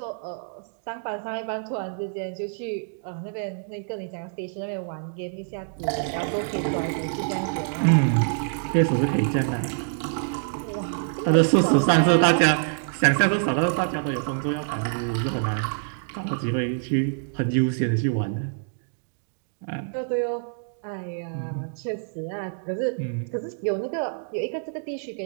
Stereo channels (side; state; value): left; silent; digital silence